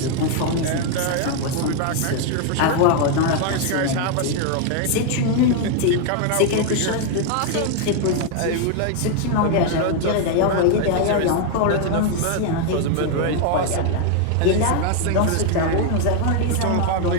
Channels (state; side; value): different; both; correlation 0.00